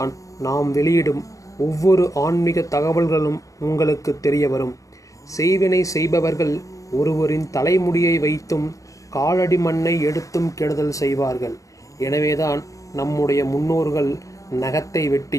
நாம் வெளியிடும் ஒவ்வொரு ஆன்மீக தகவல்களும் உங்களுக்கு தெரிய வரும். செய்வினை செய்பவர்கள் ஒருவரின் தலைமுடியை வைத்தும் காலடி மண்ணை எடுத்தும் கெடுதல் செய்வார்கள். எனவேதான் நம்முடைய முன்னோர்கள் நகத்தை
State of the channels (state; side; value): late; right; 0.16 ms